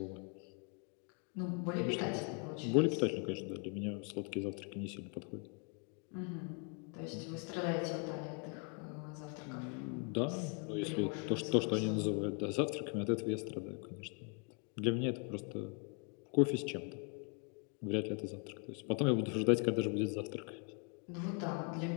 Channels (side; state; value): right; quieter; 37.9 dB